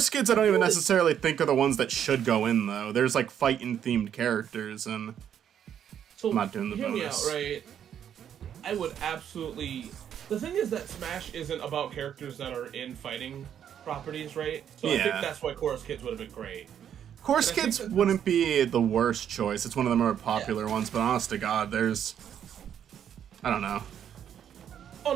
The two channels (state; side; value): quieter; left; 9.2 dB